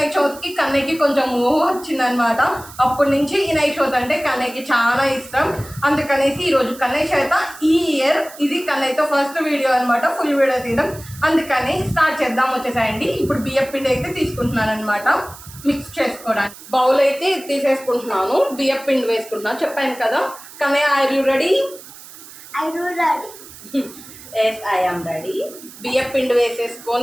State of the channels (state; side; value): noise; right; hiss, 18 dB below the sound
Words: చవితికి కన్నయ్యకి కొంచెం ఊహ వచ్చిందనమాట. అప్పటి నుంచి వినాయక చవితి అంటే కన్నయ్యకి చాలా ఇష్టం. అందుకనేసి ఈరోజు కన్నయ్య చేత ఈ ఇయర్ ఇది కన్నయ్యతో ఫస్ట్ వీడియో అనమాట, ఫుల్ వీడియో తీయడం. అందుకని స్టార్ట్ చేద్దాం. వచ్చేసాయండి. ఇప్పుడు బియ్యం పిండి అయితే తీసుకుంటున్నాను అనమాట మిక్స్ చేసుకోవడానికి. బౌల్ అయితే తీసేసుకుంటున్నాను, బియ్యం పిండి వేసుకుంటున్నాను. చెప్పాను కదా. Kannayya are you ready? Yes I am ready. బియ్యం పిండి